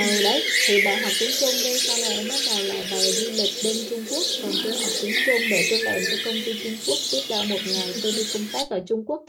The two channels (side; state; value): both; identical; correlation 1.00